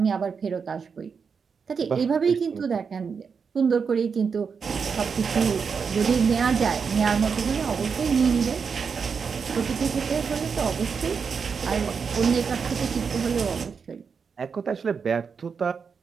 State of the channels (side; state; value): left; quieter; 5.9 dB